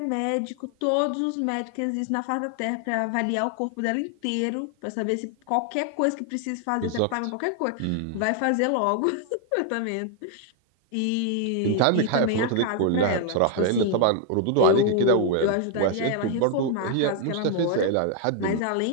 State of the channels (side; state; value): both; different; correlation 0.00